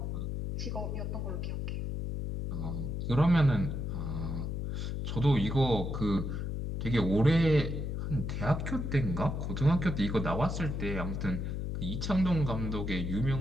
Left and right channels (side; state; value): left; noise; hum, 3 dB below the sound